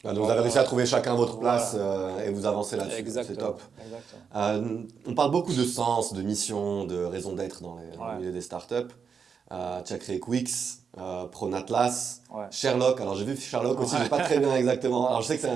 Ah, donc vous avez réussi à trouver chacun votre place Voilà. et vous avancez là-dessus. C'est Exactement. top. Exactement. On parle beaucoup de sens, de mission, de raison d'être dans le Ouais. milieu des startups. Tu as créé Quix, Pronatlas, Ouais. Sherlock. Alors j'ai vu Sherlock aussi, Ouais. je sais pas très bien exactement. Alors je sais que c'est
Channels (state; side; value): quieter; left; 6.3 dB